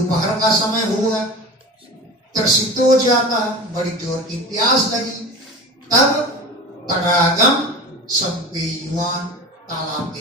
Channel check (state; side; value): normal; both; correlation 0.33